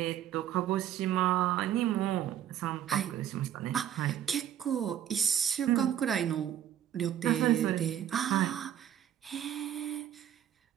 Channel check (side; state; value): left; quieter; 10.6 dB